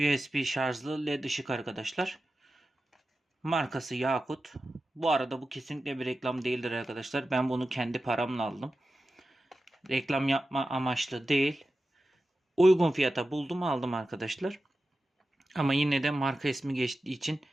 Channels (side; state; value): both; normal; correlation 0.93